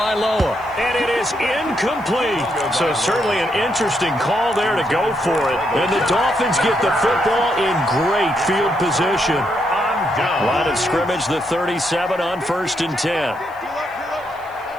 and it is incomplete. So certainly an interesting call there to go for it. And the Dolphins get the football in great field position. Line of scrimmage, the 37 on 1st and 10.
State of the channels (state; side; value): noise; left; hiss, 29 dB below the sound